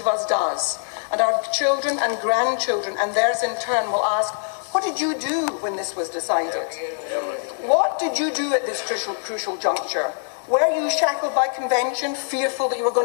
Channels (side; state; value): right; silent; digital silence